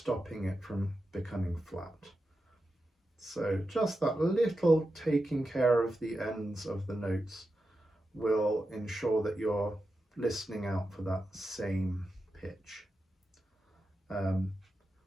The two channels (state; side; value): normal; both; correlation 0.90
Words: it from becoming flat. So just that little taking care of the ends of the notes will ensure that you're listening out for that same pitch.